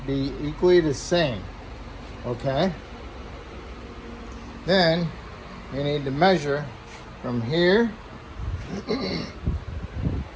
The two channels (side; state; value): both; identical; correlation 1.00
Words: be equally the same. Okay? Then you need to measure from here